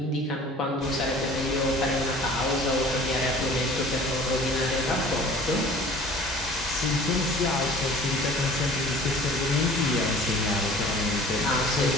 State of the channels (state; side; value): normal; both; correlation 0.47